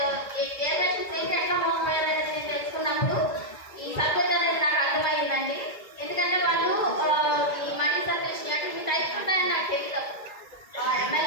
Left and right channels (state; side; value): late; right; 1.9 ms